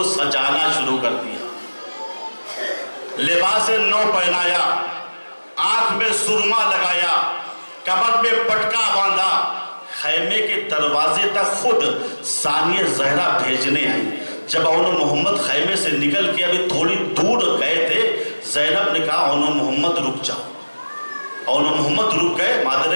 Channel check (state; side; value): inverted; both; correlation -1.00